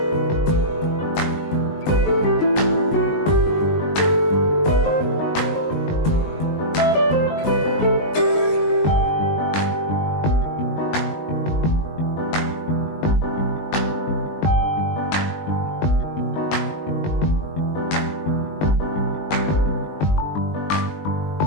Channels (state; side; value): late; right; 19 ms